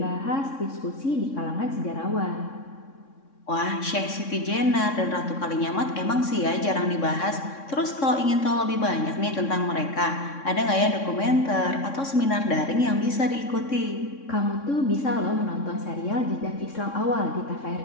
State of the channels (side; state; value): right; late; 3.6 ms